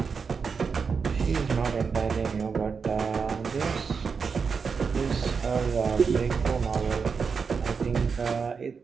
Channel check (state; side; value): quieter; left; 5.5 dB